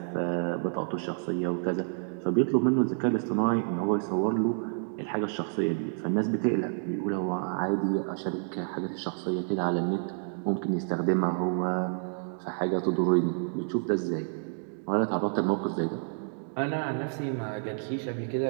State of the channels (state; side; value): silent; left; digital silence